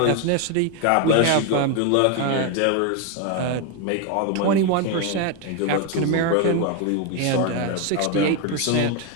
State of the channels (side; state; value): both; different; correlation 0.01